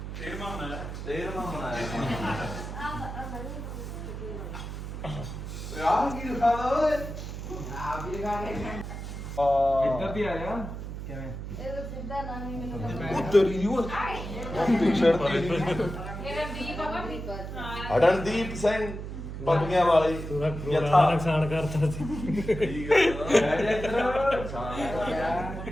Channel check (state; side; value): noise; right; hum, 8 dB below the sound